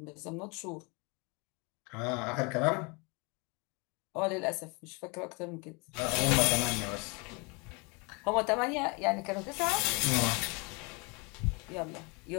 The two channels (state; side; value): quieter; right; 30.2 dB